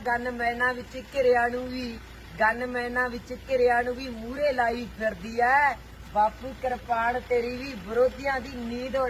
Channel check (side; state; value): both; identical; correlation 1.00